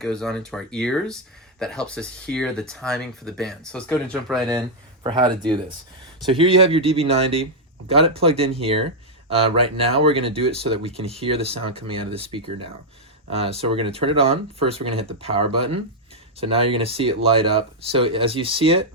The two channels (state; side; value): normal; both; correlation -0.03